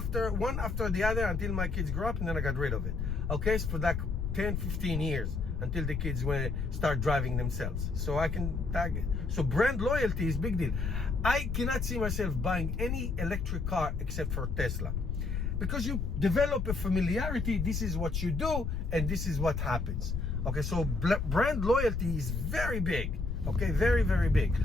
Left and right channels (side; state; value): left; noise; rumble, 2 dB below the sound